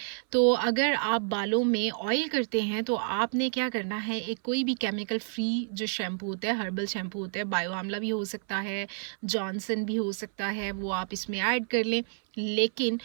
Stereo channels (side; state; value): left; silent; 58 dB below the other